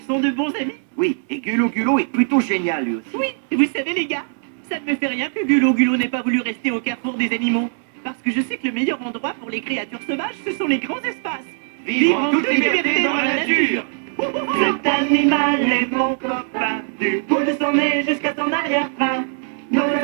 sont de bons amis. Oui, et Gulo est plutôt génial lui aussi. Oui, vous savez, les gars, ça ne me fait rien que Gulo n'ait pas voulu rester au carrefour des animaux. Parce que je sais que le meilleur endroit pour les créatures sauvages, ce sont les grands espaces. Vivre en toute liberté dans la nature. Cet animal est mon copain, du bout de son nez jusqu'à son arrière-train. Nos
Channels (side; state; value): left; silent; 61 dB below the other